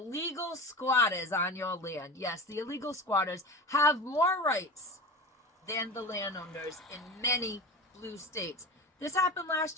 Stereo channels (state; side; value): normal; both; correlation 0.30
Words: squatters on your land. Yes, the illegal squatters have more rights than the landowners in many blue states. This happened